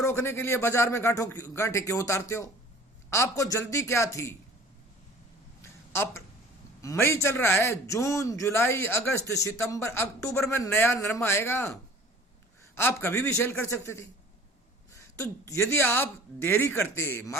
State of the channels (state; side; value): normal; both; correlation 0.47